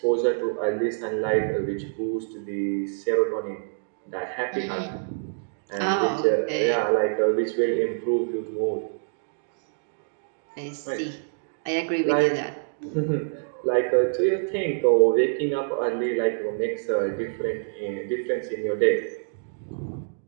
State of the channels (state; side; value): silent; left; digital silence